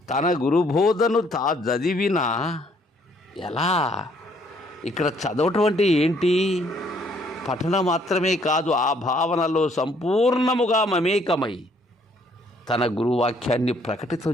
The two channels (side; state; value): both; normal; correlation 0.65